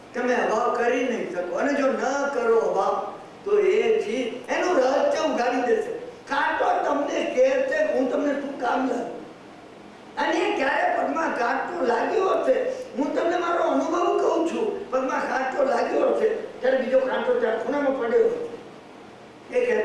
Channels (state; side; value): identical; both; correlation 1.00